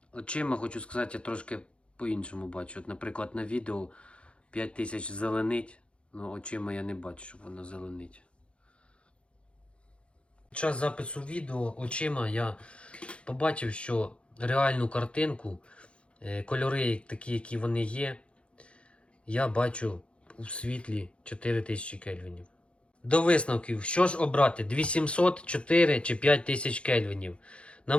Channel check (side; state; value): right; late; 0.059 ms